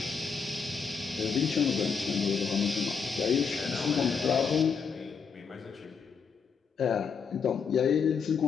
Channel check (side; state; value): right; quieter; 6.0 dB